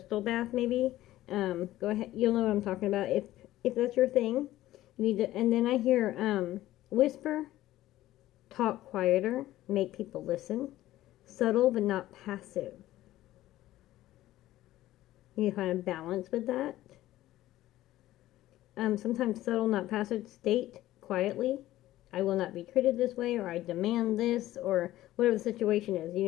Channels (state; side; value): quieter; right; 15.1 dB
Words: bath, maybe. Go ahead. You'll know what I'm talking about if that's your thing. You need to. And then I hear whisper, talk quieter, make people listen, subtle but not passive. You need to find a balance with that. Sometimes subtle, not passive. State quietly, I will not be treated this way, or I demand this, or whatever the situation is. You